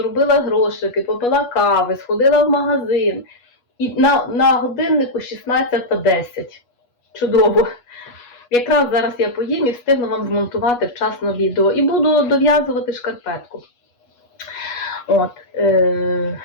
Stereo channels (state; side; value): late; right; 8.3 ms